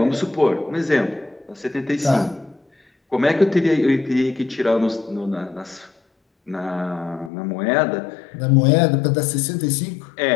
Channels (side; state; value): right; drops out; at 7.3 s